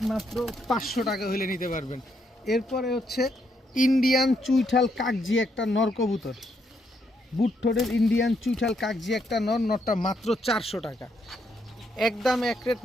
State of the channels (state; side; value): normal; both; correlation 0.76